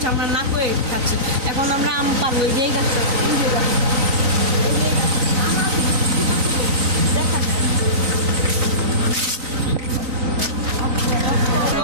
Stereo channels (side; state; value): left; late; 3.9 ms